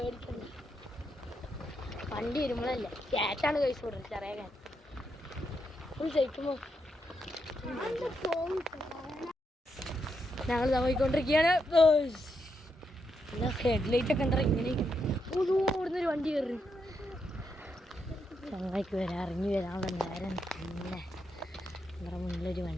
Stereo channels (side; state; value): both; normal; correlation 0.81